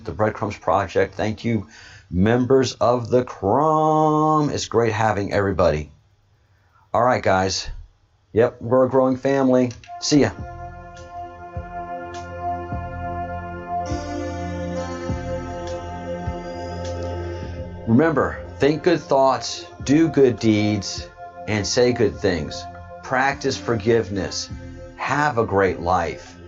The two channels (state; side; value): identical; both; correlation 1.00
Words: the Breadcrumbs Project. Thank you, members of the Crumb. It's great having everybody. All right, guys. Yep, we're a growing family. See ya. Remember, think good thoughts, do good deeds, and say good things. Practice forgiveness. Have a great life.